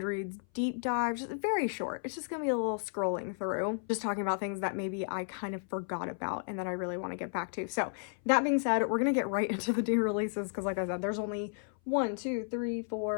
deep dive, just very short. It's just going to be a little scrolling through, just talking about things that maybe I kind of forgot about and that I really want to get back to. So that being said, we're going to get right into the new releases because like I said, there's only 1, 2, 3,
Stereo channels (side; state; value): right; silent; 56 dB below the other